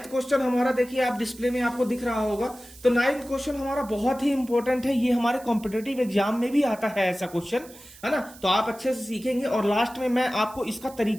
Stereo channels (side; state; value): right; noise; hiss, 21 dB below the sound